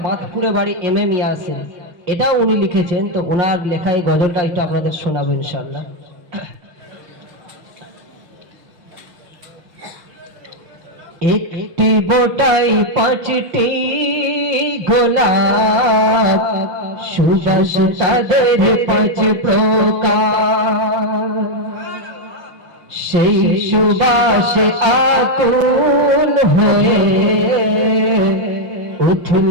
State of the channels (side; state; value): left; late; 5.6 ms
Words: বাঁধপুরে বাড়ি MM ইয়াসিন, এটাও উনি লিখেছেন। তো ওনার লেখা এই গজলটা একটু আপনাদের শোনাবো ইনশাআল্লাহ। একটি বোটাই 5টি গোলাপ, সুবাস তাদের 5 প্রকার। সেই সুবাসে আকুল হয়ে